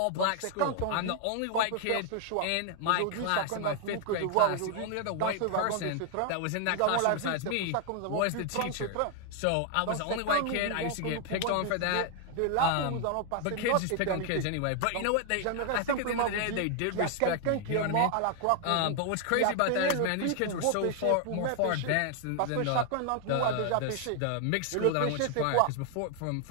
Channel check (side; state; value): both; different; correlation 0.00